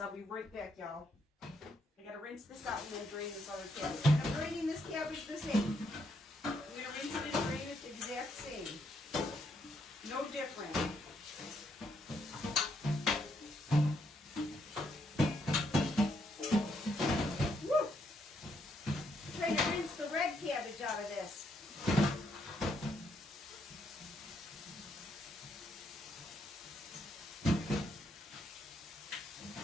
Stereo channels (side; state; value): both; normal; correlation 0.75